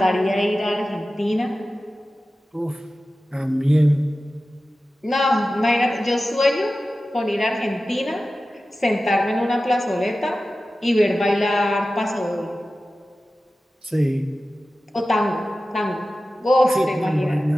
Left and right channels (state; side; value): normal; both; correlation 0.95